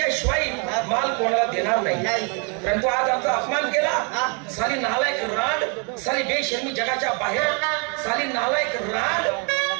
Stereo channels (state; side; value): quieter; left; 35.9 dB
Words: माल कोणाला देणार नाही, परंतु आज आमचा अपमान केला. साली नालायक रांड, साली बेशर्मी जगाच्या बाहेर, साली नालायक रांड.